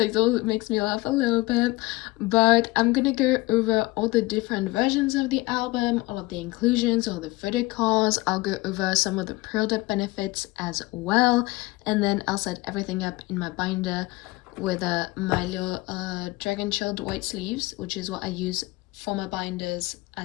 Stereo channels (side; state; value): right; quieter; 21.3 dB